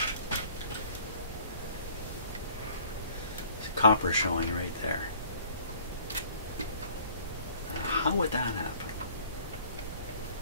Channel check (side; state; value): both; inverted; correlation -0.54